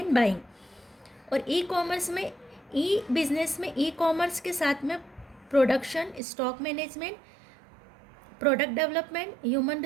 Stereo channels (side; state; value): left; drops out; at 6.2 s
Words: बाइंग, और e-commerce में, e-business में e-commerce के साथ में production, stock management, product development, human